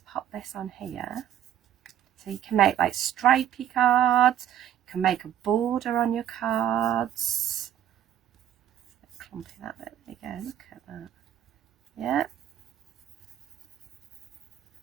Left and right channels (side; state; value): left; quieter; 10.8 dB